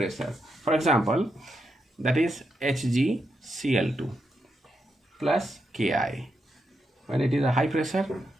For example, that is HgCl2 plus Ki. When it is a high pressure,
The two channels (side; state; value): both; normal; correlation 0.83